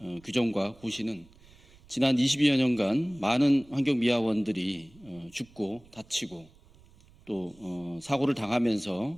규정과 고시는 지난 22여 년간 많은 환경미화원들이 죽고 다치고 또 사고를 당하면서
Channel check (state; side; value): noise; right; rumble, 26 dB below the sound